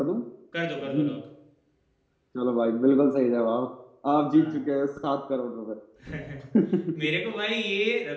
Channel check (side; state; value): both; identical; correlation 1.00